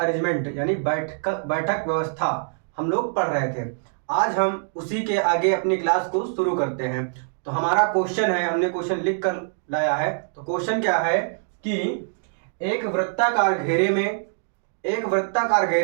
यानी बैठक व्यवस्था हम लोग पढ़ रहे थे। आज हम उसी के आगे अपनी क्लास को शुरू करते हैं। तो हमारा क्वेश्चन है, हमने क्वेश्चन लिख कर लाया है। तो क्वेश्चन क्या है कि एक वृत्ताकार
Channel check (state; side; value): silent; left; digital silence